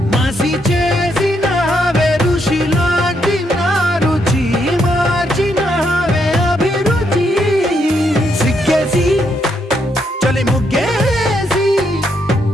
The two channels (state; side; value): normal; both; correlation 0.77